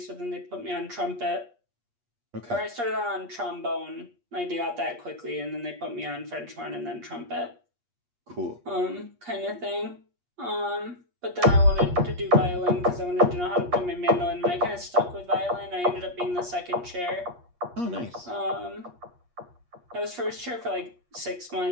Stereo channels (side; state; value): left; late; 8.4 ms